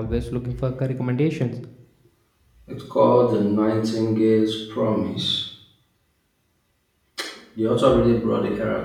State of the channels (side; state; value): both; identical; correlation 1.00